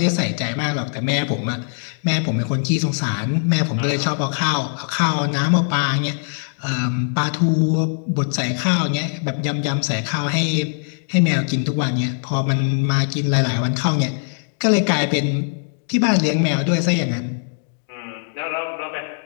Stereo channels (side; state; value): right; silent; 58 dB below the other